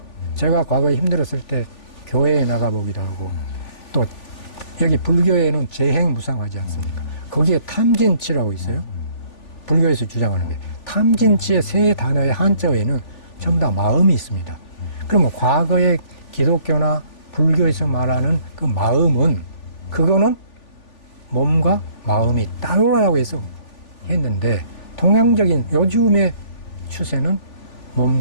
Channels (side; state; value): right; late; 3.4 ms